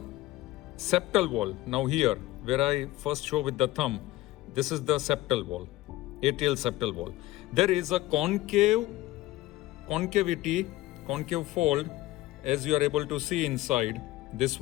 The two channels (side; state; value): right; quieter; 17.2 dB